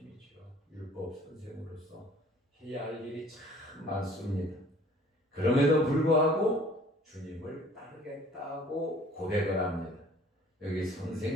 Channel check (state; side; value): normal; both; correlation 0.53